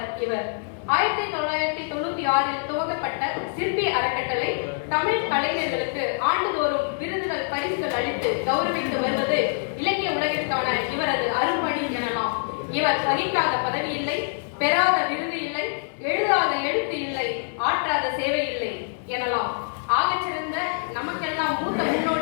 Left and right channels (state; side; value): silent; right; 58 dB below the other